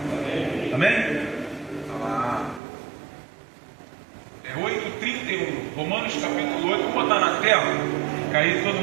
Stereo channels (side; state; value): left; drops out; at 2.6 s